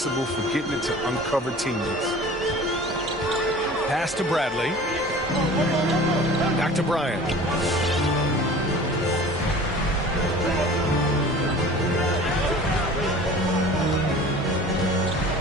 for getting it to uncover teammates. Pass to Bradley. Back to Bryant.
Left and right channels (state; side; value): normal; both; correlation 0.42